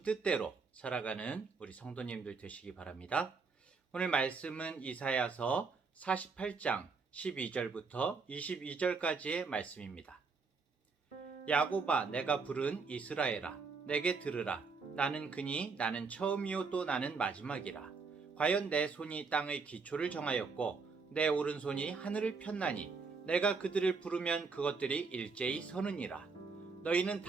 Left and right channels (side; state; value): left; quieter; 4.7 dB